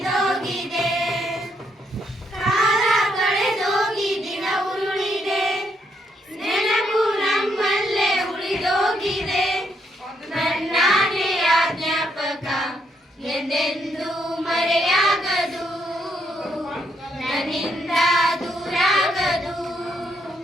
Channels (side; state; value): both; normal; correlation 0.75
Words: ಕಾಲ ಕಳೆದೋಗಿ ದಿನ ಉರುಳಿದೆ ನೆನಪು ನಮ್ಮಲ್ಲೇ ಉಳಿದೋಗಿದೆ ನನ್ನಾನೆಯ ಜ್ಞಾಪಕ ಎಂದೆಂದೂ ಮರೆಯಾಗದು ನನ್ನಿಂದ ದೂರಾಗದು